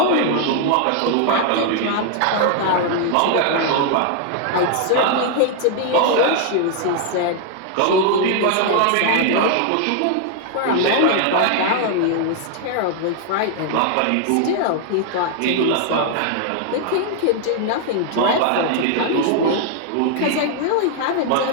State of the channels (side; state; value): both; different; correlation 0.00